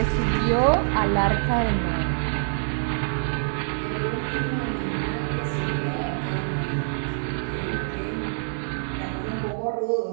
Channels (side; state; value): left; silent; digital silence